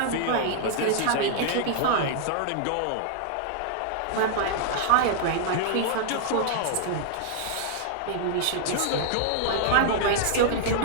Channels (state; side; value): different; both; correlation -0.01